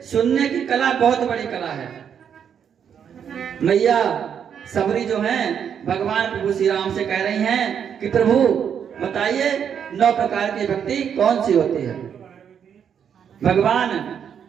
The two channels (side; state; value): left; quieter; 8.0 dB